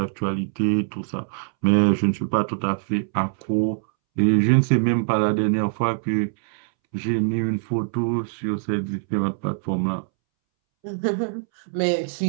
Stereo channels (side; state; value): left; silent; 63 dB below the other